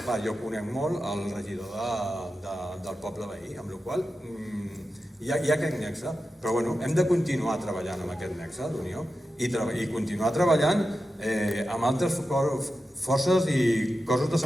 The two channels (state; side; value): normal; both; correlation 0.91